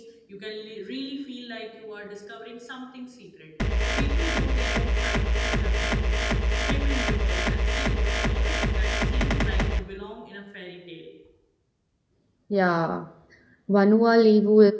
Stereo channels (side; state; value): both; identical; correlation 1.00